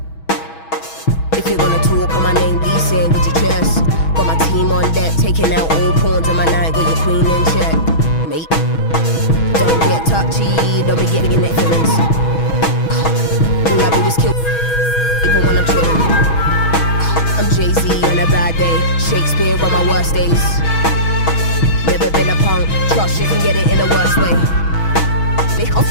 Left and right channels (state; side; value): late; right; 6.2 ms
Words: If you're gonna talk on my name, be saying with your chest. Got my team on deck, taking out all pawns on my night, got your queen in check, mate. Don't get touchy, don't be getting in their feelings. All I do is kill, even when I'm chilling. I'm Jay-Z on a bad day, Shakespeare on my worst days. Never been a punk, trust you can get it in the worst way.